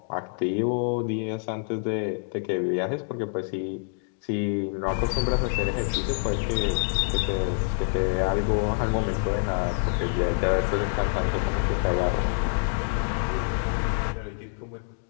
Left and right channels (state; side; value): silent; right; digital silence